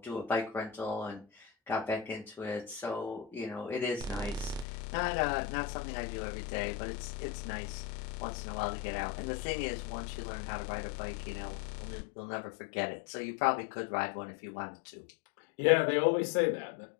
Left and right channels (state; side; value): drops out; right; at 4.7 s